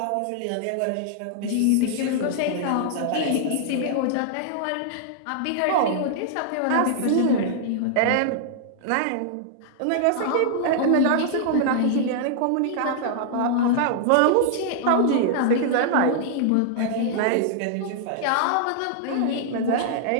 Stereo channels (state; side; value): different; both; correlation -0.01